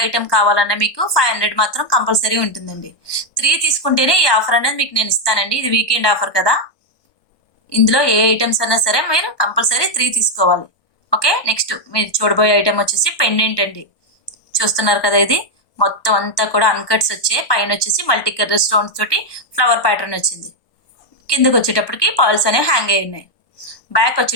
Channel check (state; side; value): late; right; 1.2 ms